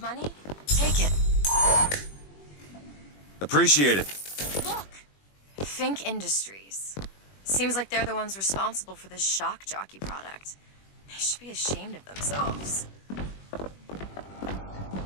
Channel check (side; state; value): right; late; 21 ms